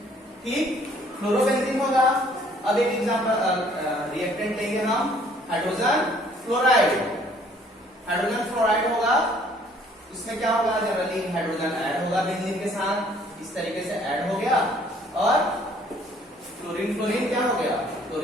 ठीक, फ्लोरोबेंजीन होगा। अब एक एग्जांपल रिएक्टेंट लेंगे हम, हाइड्रोजन फ्लोराइड, हाइड्रोजन फ्लोराइड होगा, उसमें क्या होगा, जनरली हाइड्रोजन ऐड होगा बेंजीन के साथ, इस तरीके से ऐड हो गया और फ्लोरीन, फ्लोरीन क्या हो गया,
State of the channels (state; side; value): normal; both; correlation 0.60